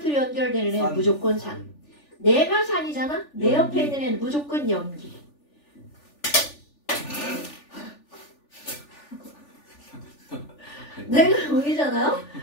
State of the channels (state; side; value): late; right; 3.4 ms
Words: 연결되는 애는 무조건 산. 내가 산이잖아? 내 옆에 있는 애는 무조건 염기. 내가 염기잖아요?